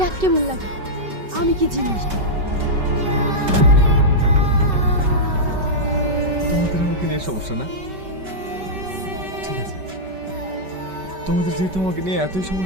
কেমন লাগে, আমি কি জিনিস। তোমাদের আমাকে নিয়ে সমস্যা না? ঠিক আছে, তোমাদের যেহেতু আমাকে নিয়ে এতই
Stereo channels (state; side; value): late; left; 5.2 ms